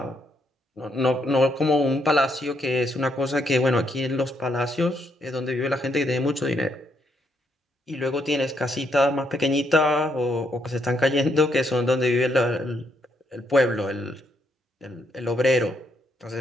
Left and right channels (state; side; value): normal; both; correlation 0.75